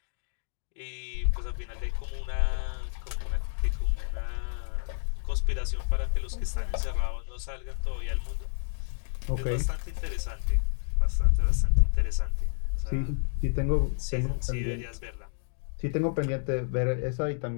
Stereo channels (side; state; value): right; silent; digital silence